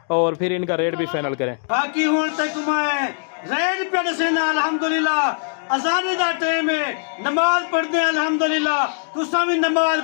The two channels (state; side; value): silent; right; digital silence